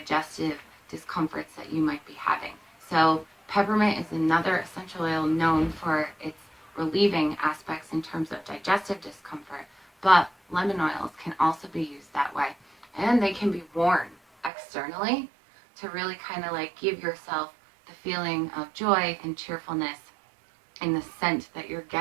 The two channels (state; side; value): drops out; left; at 14.5 s